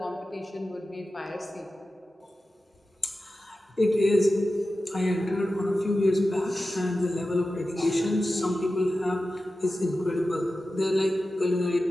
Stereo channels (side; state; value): both; normal; correlation 0.93